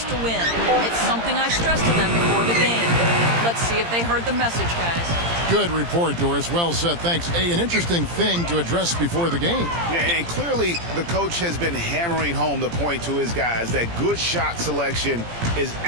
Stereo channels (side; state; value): left; late; 17 ms